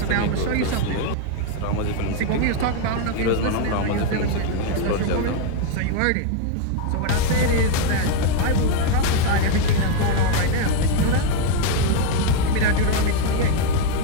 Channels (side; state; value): both; different; correlation 0.01